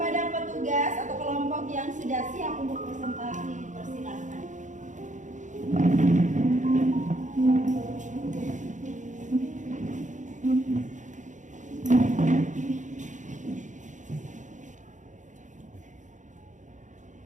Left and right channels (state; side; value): late; left; 0.36 ms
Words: petugas atau kelompok yang sudah siap untuk presentasi, dipersilakan.